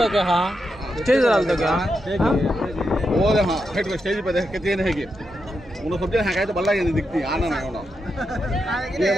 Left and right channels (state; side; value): normal; both; correlation 0.85